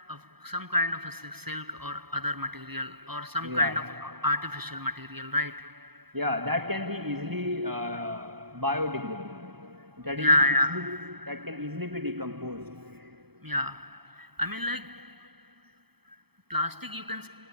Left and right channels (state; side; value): late; left; 0.97 ms